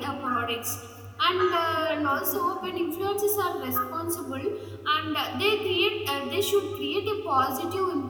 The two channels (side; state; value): both; identical; correlation 1.00